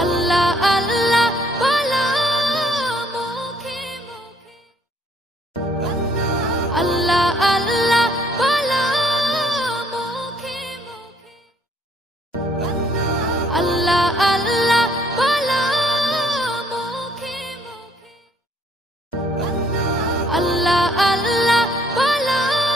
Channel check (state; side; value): normal; both; correlation 0.64